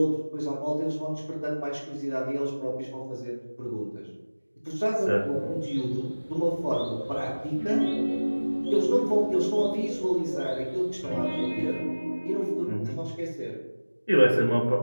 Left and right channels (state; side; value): inverted; both; correlation -1.00